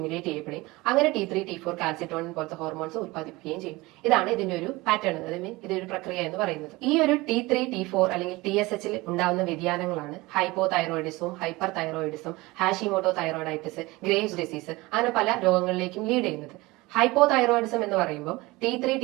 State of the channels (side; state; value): left; quieter; 21.6 dB